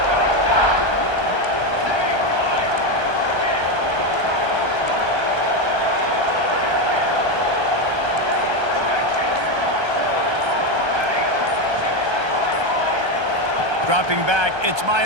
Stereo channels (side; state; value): left; late; 1.3 ms